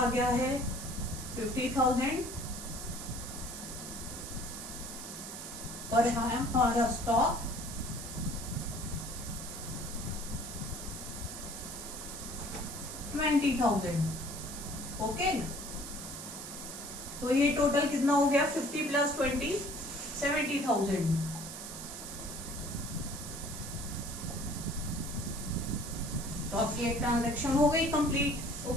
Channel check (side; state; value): right; noise; hiss, 9 dB below the sound